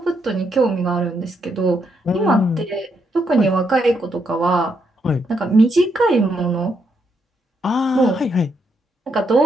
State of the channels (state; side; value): normal; both; correlation 0.77